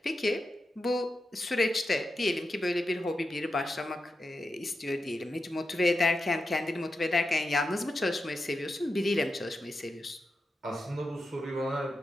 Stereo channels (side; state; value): both; normal; correlation 0.89